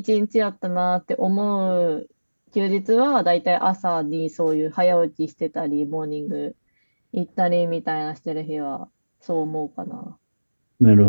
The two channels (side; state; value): both; inverted; correlation -1.00